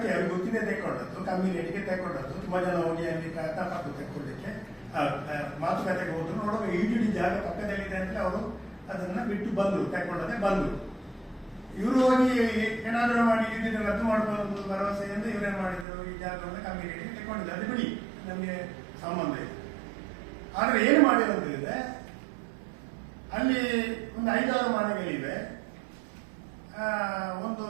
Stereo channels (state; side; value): drops out; left; at 15.9 s